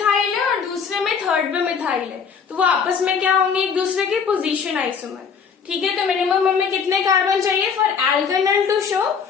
है और दूसरे में थर्ड पे मिथाइल है, तो वो आपस में क्या होंगे, एक दूसरे के पोजीशन आइसोमर। ठीक है, तो मिनिमम हमें कितने कार्बन चाहिए for alkanal to show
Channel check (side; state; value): right; quieter; 6.3 dB